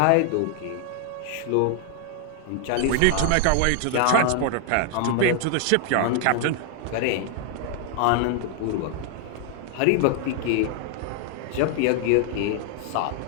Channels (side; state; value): both; different; correlation 0.00